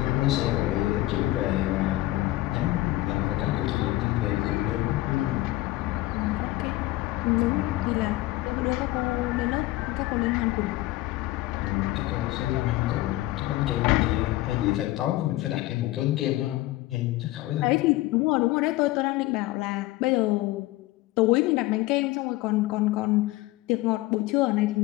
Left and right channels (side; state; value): right; quieter; 17.8 dB